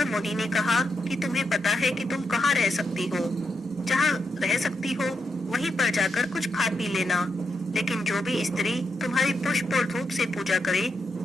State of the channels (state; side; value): normal; both; correlation 0.83